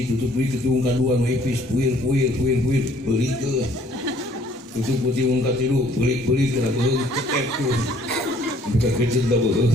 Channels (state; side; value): normal; both; correlation 0.59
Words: tutup deui ketung kadua nu ipis puir beli ke. Tutup putih ungkat tilu beli kena beung cetek tuh. Bukan kecil dah beung.